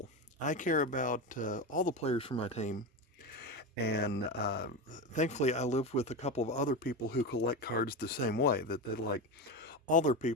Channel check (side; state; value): both; normal; correlation 0.19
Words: I care about all the players for my team, and thankfully I live with a couple of other people who collect cards the same way, that they like all their